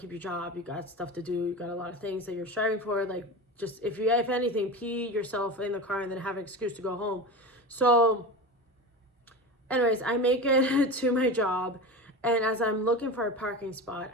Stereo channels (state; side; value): normal; both; correlation 0.28